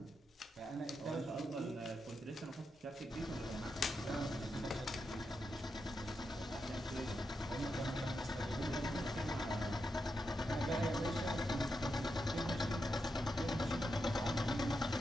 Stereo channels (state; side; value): normal; both; correlation 0.86